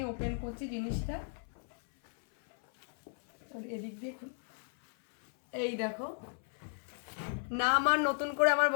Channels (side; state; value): right; silent; 55 dB below the other